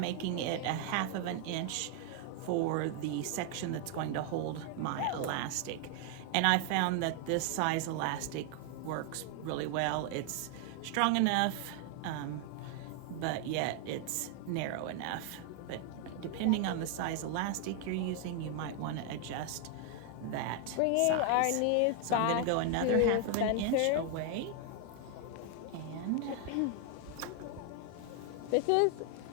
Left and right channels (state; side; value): different; both; correlation 0.00